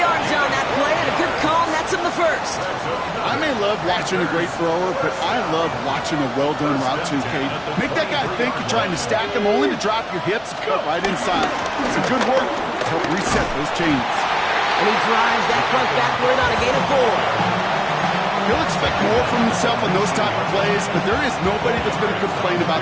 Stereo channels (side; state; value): both; identical; correlation 1.00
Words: on that play, and a good call nets him the first. I may love watching a great thrower, but I love watching a well-done route too, Kate. Make that guy think you're trying to stack him, only to drop your hips and cut right inside. Some good work to help reset those chains. And he drives that front backward on a gain of 4. He'll expect more from himself on those type of plays, but there is nobody that's going to complain